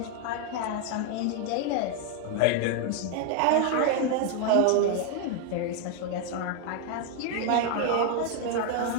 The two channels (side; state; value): both; different; correlation 0.01